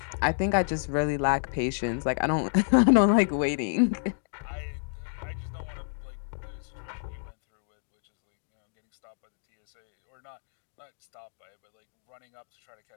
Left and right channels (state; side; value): silent; right; digital silence